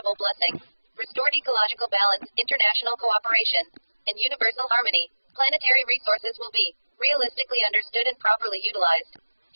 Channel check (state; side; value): inverted; both; correlation -1.00